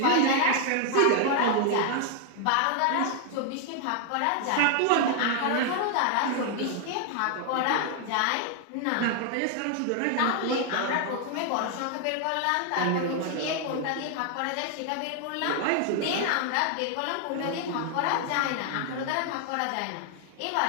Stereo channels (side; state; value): both; different; correlation 0.00